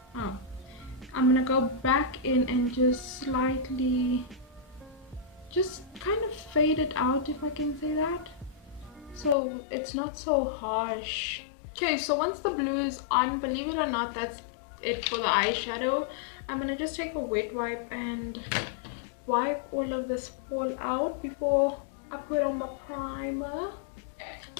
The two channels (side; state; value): right; drops out; at 9.3 s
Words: Oh, I'm gonna go back in and just slightly just kind of fade it out, if I can say that, so it's not so harsh. Okay, so once the blue is on, believe it or not, that's it for the eyeshadow. I'm gonna just take a wet wipe and wipe all of this fall out before I put on the primer.